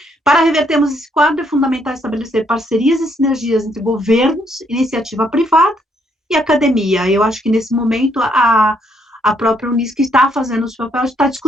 Para revertermos esse quadro, é fundamental estabelecer parcerias e sinergias entre governos, iniciativa privada e academia. Eu acho que, nesse momento, a própria Unisc está fazendo o seu papel, está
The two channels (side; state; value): both; normal; correlation 0.71